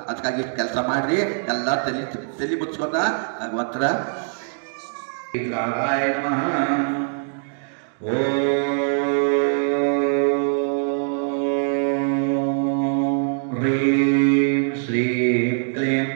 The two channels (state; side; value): silent; left; digital silence